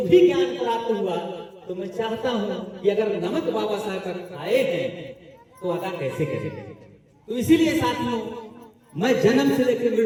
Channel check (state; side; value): identical; both; correlation 1.00